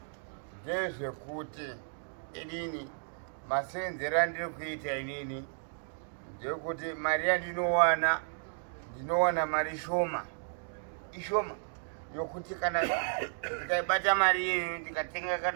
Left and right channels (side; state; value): left; silent; digital silence